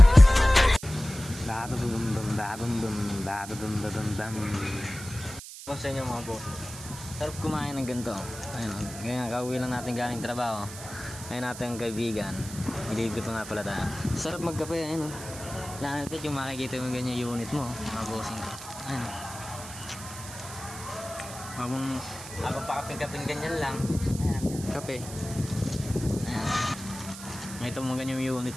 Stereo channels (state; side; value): noise; right; hiss, 12 dB below the sound